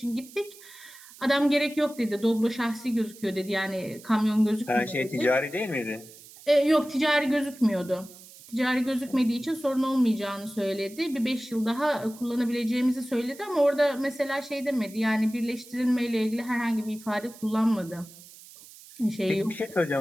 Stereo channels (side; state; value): right; noise; hiss, 20 dB below the sound